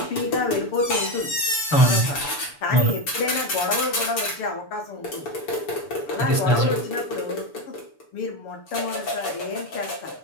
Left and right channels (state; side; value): late; right; 6.9 ms